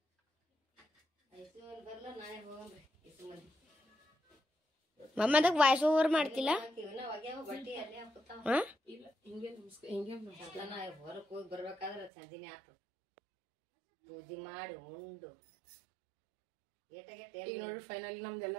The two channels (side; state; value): left; drops out; at 12.1 s